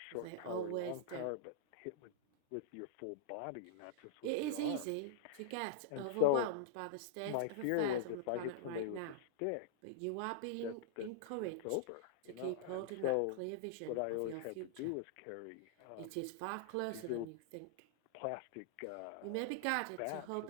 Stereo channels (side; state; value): both; different; correlation -0.01